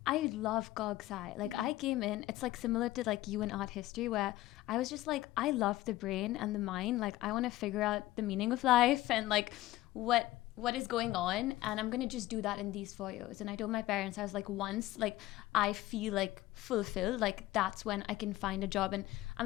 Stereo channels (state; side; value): quieter; right; 16.6 dB